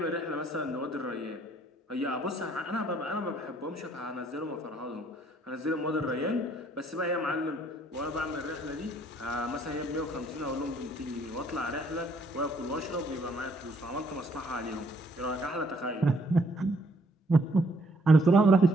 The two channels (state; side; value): normal; both; correlation 0.65